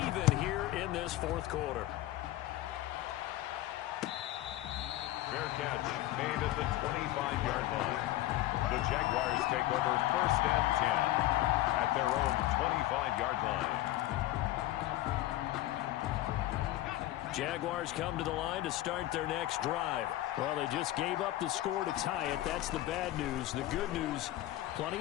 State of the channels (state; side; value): quieter; right; 15.4 dB